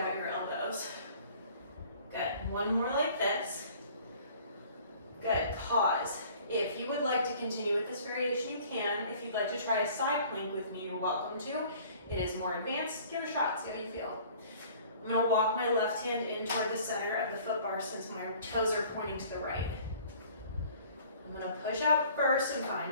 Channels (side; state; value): both; inverted; correlation -0.52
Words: your elbows. Good. 1 more like this. Good. Pause. If you would like to continue with this variation, you can. If you'd like to try a side plank with me, you're welcome to. It is more advanced. Give it a shot. See how you feel. I'm going to walk my left hand in toward the center of the foot bar since my toes are pointing to the right. I'm going to push out first and find